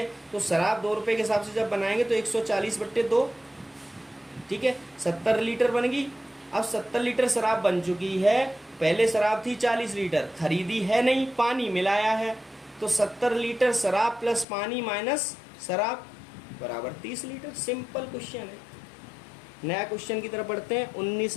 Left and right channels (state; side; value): drops out; right; at 14.5 s